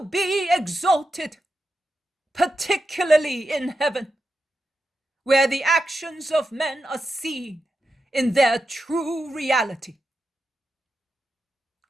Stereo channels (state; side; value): normal; both; correlation 0.88